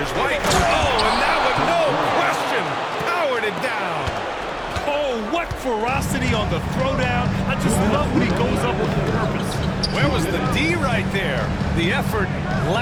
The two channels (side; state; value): both; identical; correlation 1.00